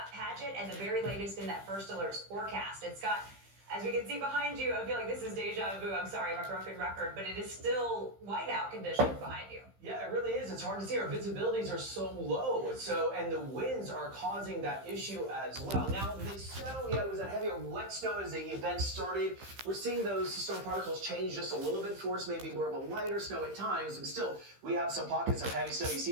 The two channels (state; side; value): late; left; 15 ms